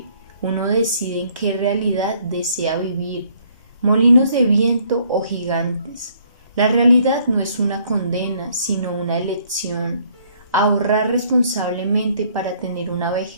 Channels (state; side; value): inverted; both; correlation -0.64